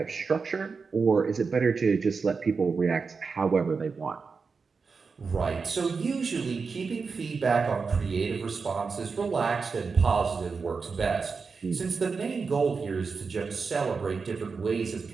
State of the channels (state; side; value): quieter; left; 4.9 dB